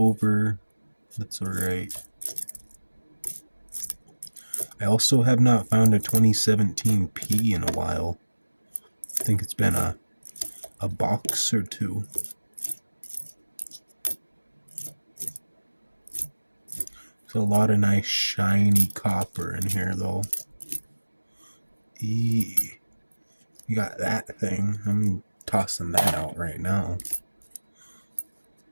That's alright. I also have not found a 2017 P in a while. I think it's been a box or two. There's a lot of nice shiny copper in here though. You got that thing. I'm tossing that out right now.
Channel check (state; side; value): inverted; both; correlation -1.00